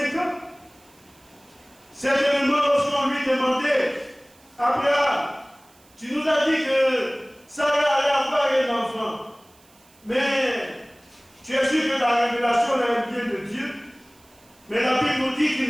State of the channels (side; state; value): right; noise; hiss, 29 dB below the sound